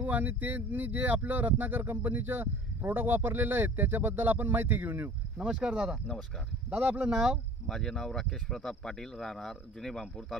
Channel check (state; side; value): normal; both; correlation 0.44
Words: आणि त्यांनी जे आपलं रत्नाकर कंपनीचं प्रोडक्ट वापरलेलं आहे त्याच्याबद्दल आपण माहिती घेऊन येऊ. नमस्कार दादा. नमस्कार दादा, आपलं नाव? माझे नाव राकेश प्रताप पाटील, राहणार जुने बांपूर,